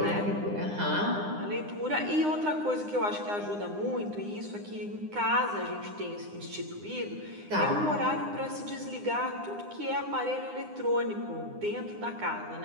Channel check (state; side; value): late; left; 9.8 ms